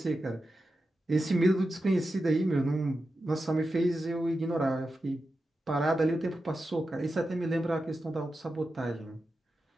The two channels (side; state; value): both; normal; correlation 0.91